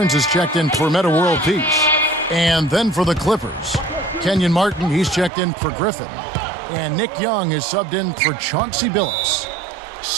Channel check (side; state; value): left; drops out; at 5.3 s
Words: is checked in for Meta World Peace. And then for the Clippers, Kenyon Martin, he's checked in for Griffin. And Nick Young is subbed in for Chauncey Billups.